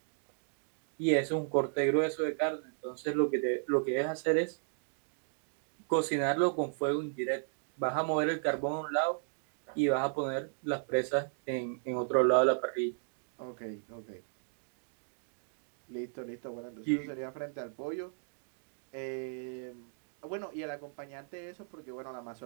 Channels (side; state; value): left; silent; digital silence